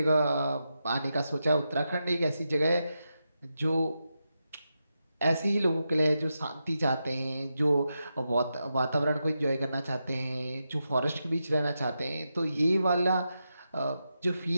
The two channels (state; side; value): inverted; both; correlation -0.88